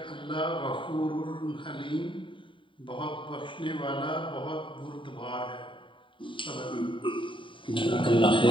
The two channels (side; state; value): right; late; 0.25 ms